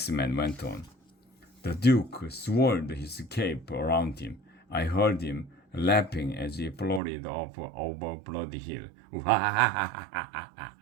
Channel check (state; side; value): drops out; left; at 7.0 s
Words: went on. The Duke swirled his cape around him. I heard him laughing as he floated off over Bloody Hill.